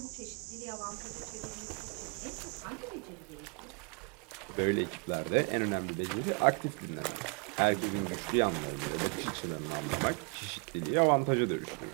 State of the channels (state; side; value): quieter; left; 35.1 dB